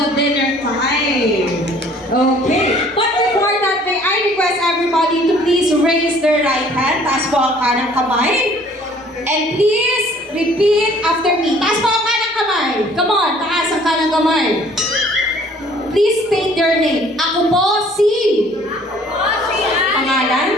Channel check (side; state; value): both; normal; correlation 0.55